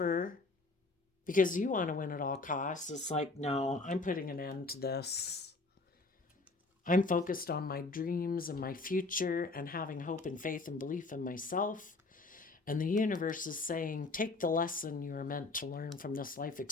because you want to win at all costs. It's like, no, I'm putting an end to this. I'm focused on my dreams and my future and having hope and faith and belief in myself. And the universe is saying, take the lesson you are meant to learn from this life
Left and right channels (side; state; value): right; quieter; 3.5 dB